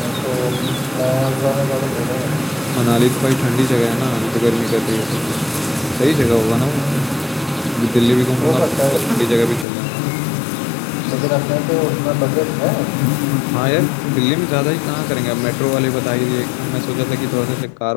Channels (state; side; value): drops out; right; at 9.7 s